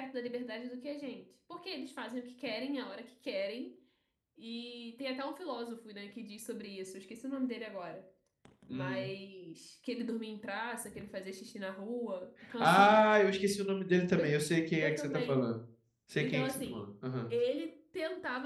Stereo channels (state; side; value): identical; both; correlation 1.00